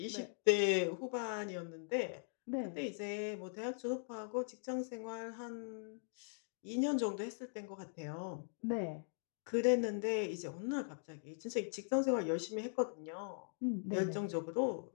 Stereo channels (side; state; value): right; silent; digital silence